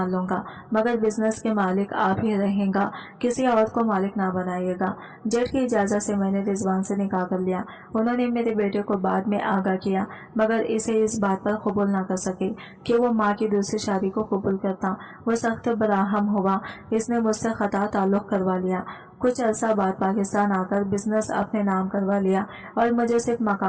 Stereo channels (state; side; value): identical; both; correlation 1.00